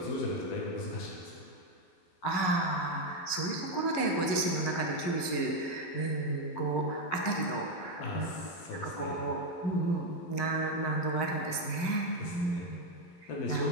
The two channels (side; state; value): right; late; 11 ms